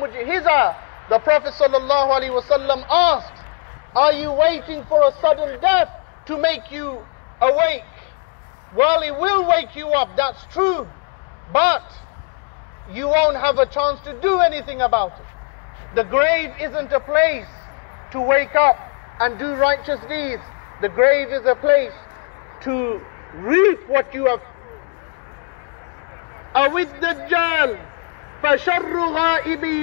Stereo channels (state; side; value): quieter; right; 37.2 dB